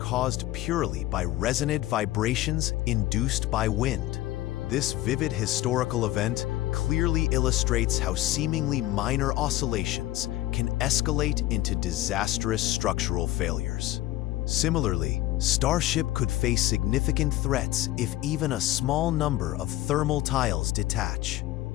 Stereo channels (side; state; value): right; quieter; 15.8 dB